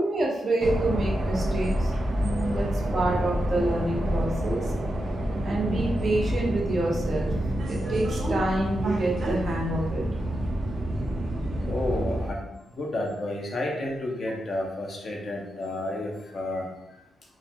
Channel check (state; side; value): normal; both; correlation 0.87